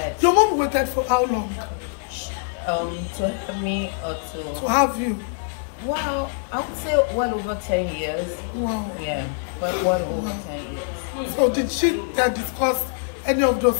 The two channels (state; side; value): silent; right; digital silence